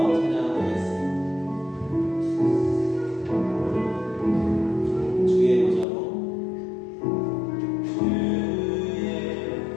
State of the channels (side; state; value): right; drops out; at 5.9 s